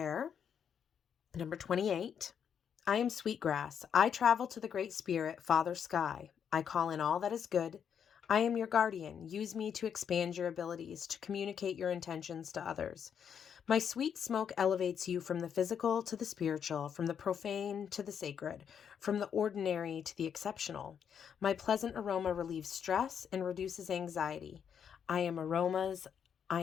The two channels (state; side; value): quieter; right; 7.9 dB